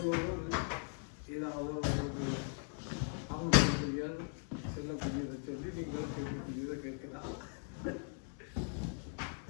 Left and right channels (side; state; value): right; silent; 52 dB below the other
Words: ஏதாவது ஒரு அவங்களுடைய செல்லக்கூடியதை சொல்லி நீங்கள் கேட்கக்கூடியதை கேட்கலாம்.